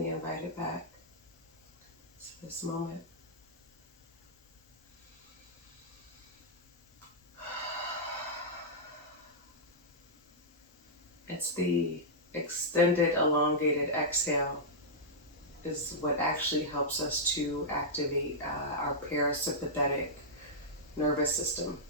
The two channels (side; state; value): both; normal; correlation -0.09